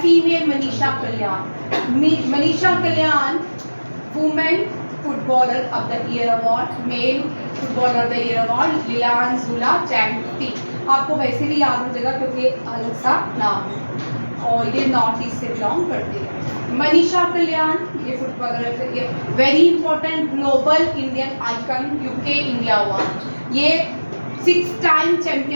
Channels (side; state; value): both; inverted; correlation -1.00